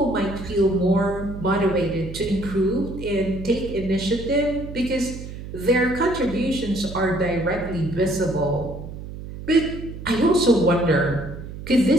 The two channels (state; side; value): noise; right; hum, 11 dB below the sound